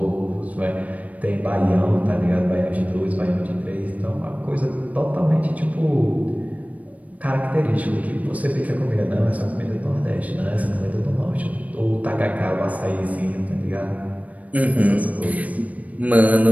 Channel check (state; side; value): late; left; 0.070 ms